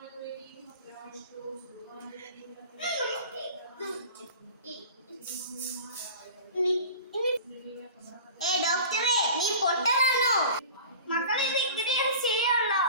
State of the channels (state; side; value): inverted; both; correlation -0.38